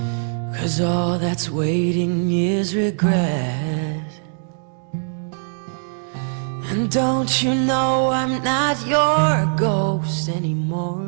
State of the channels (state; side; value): silent; left; digital silence